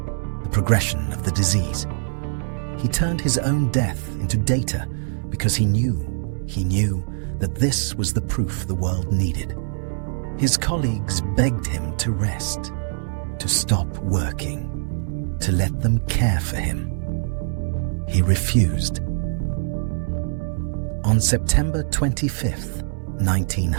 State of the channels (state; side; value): silent; left; digital silence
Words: the progression of the disease. He turned his own death into data because he knew that this was the proof the world needed. His colleagues begged him to rest, to stop working, to let them care for him. He refused. On September 25th,